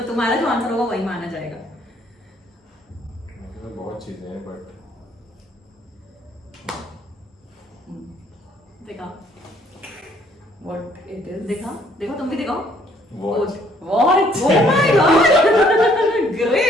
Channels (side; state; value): both; normal; correlation 0.63